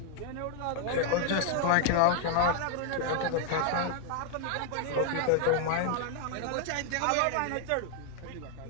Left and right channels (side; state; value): both; different; correlation 0.00